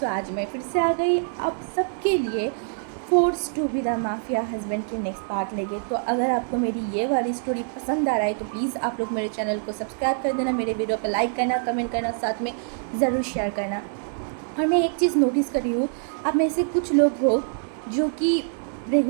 आज मैं फिर से आ गई आप सबके लिए force to be the mafia husband के नेक्स्ट पार्ट लेके। तो अगर आपको मेरी ये वाली स्टोरी पसंद आ रहा है तो प्लीज़ आप लोग मेरे चैनल को सब्सक्राइब कर देना, मेरे वीडियो पर लाइक करना, कमेंट करना, साथ में ज़रूर शेयर करना। और मैं एक चीज़ नोटिस कर रही हूँ, आप में से कुछ लोग हो जो कि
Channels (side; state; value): left; silent; digital silence